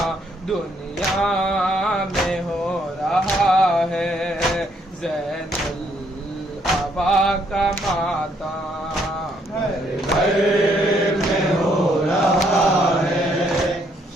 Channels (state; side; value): normal; both; correlation 0.70